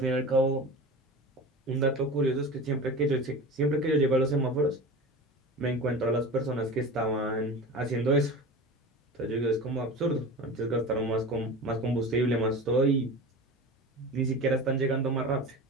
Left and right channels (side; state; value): both; normal; correlation 0.33